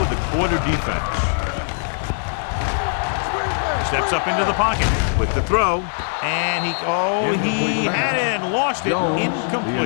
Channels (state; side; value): silent; right; digital silence